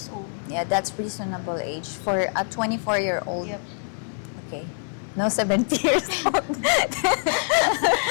old. Yeah, that's reasonable age for a 24-year-old. Yep. Okay. No 70 years old.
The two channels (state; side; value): silent; right; 61 dB below the other